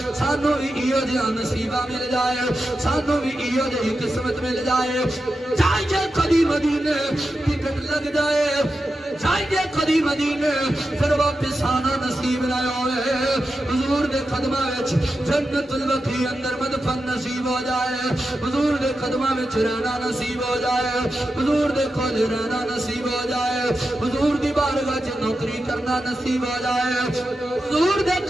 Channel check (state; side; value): normal; both; correlation 0.90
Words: سانو بھی ایو جیاں نصیبہ مل جائے سانو بھی ایو جیاں قسمت مل جائے چاہیے کبھی مدینے ٹکٹ لگ جائے چاہیے کدی مدینے پھر واپس آنا نصیب نہ ہوئے حضور دے قدمہ وچ جنت البقیع اندر مدفن نصیب ہو جائے حضور دے قدمہ وچ رہنا نصیب ہو جائے حضور دے کول رہنا نصیب ہو جائے حضور دی بارگاہ وچ نوکری کرنا نصیب ہو جائے حضور دے